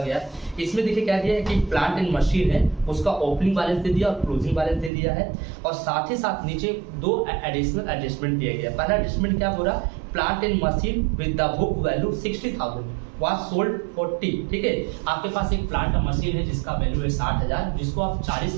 है। इसमें देखिए क्या दिया है कि प्लांट एंड मशीन है, उसका ओपनिंग बैलेंस दे दिया और क्लोजिंग बैलेंस दे दिया है, और साथ ही साथ नीचे दो एडिशनल एडजस्टमेंट दिया गया है। पहला एडजस्टमेंट क्या बोला, plant and machine with the book value 60,000 was sold 40। ठीक है, आपके पास एक प्लांट और मशीन है जिसका वैल्यू है 60,000, जिसको आप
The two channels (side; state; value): left; drops out; at 4.9 s